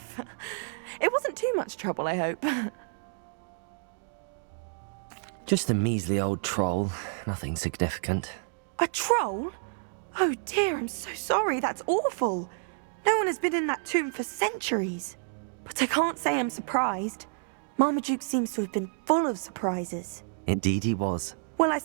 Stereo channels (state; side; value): silent; left; digital silence